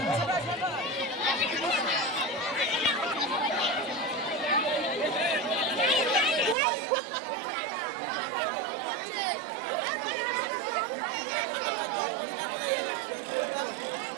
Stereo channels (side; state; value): left; drops out; at 6.6 s